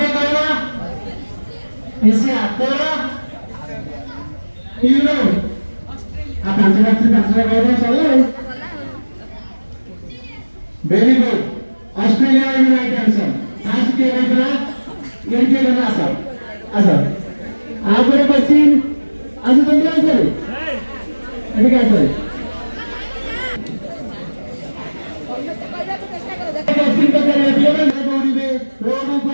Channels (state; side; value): inverted; both; correlation -1.00